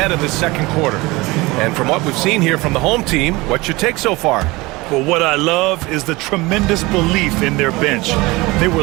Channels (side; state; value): left; quieter; 22.4 dB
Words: of the second quarter. And from what we've seen here from the home team, what's your take so far? Well, what I love is the tremendous belief in their bench. They were